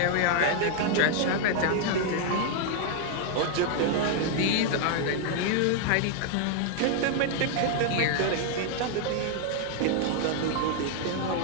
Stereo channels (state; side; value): different; both; correlation 0.00